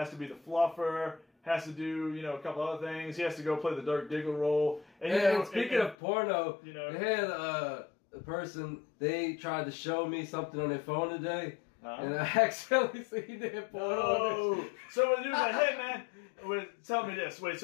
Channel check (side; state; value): right; drops out; at 6.0 s